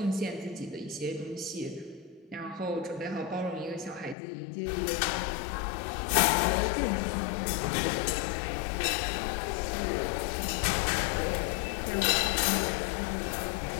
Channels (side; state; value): right; drops out; at 4.2 s